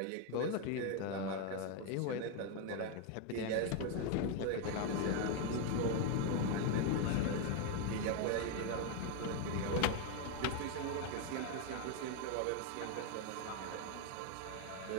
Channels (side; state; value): both; different; correlation 0.01